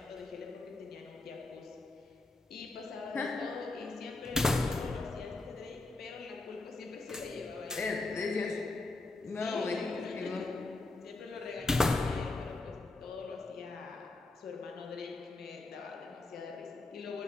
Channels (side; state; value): right; quieter; 3.1 dB